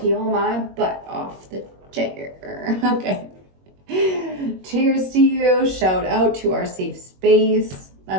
my butt off the chair. Okay. Cheers to you. Shout out to our safe space. I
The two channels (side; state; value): left; late; 21 ms